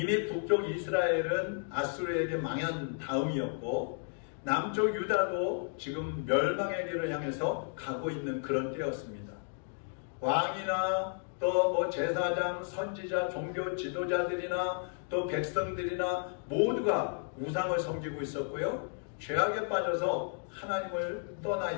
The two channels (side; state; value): right; silent; 56 dB below the other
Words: 북쪽 이스라엘은 아수르에게 망한 다음이었고 남쪽 유다도 지금 멸망의 길을 향해서 가고 있는 그런 때였습니다. 왕이나 또 제사장, 선지자, 종교 지도자들이나 또 백성들이나 모두가 우상을 섬기고 있었고요. 죄악에 빠져서 하나님을 떠나